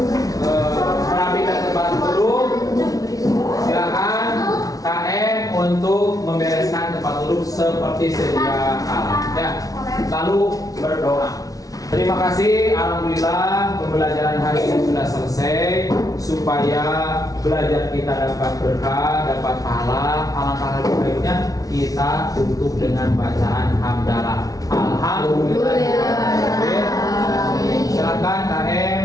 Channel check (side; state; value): right; late; 0.18 ms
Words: merapikan tempat duduk, silakan KM untuk membereskan tempat duduk seperti sedia kala. Ya, lalu berdoa. Terima kasih, alhamdulillah pembelajaran hari ini sudah selesai. Supaya belajar kita dapat berkah, dapat pahala, alangkah lebih baiknya kita tutup dengan bacaan hamdalah. Alhamdulillah. Silakan